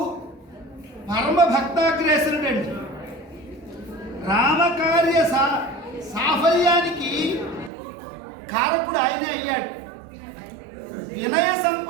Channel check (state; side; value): drops out; left; at 7.7 s